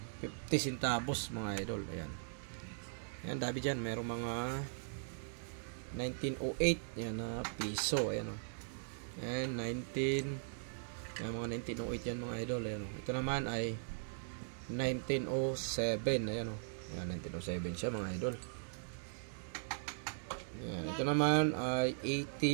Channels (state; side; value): silent; left; digital silence